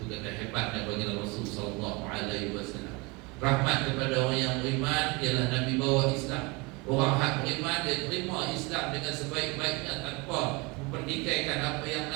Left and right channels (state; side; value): quieter; left; 26.2 dB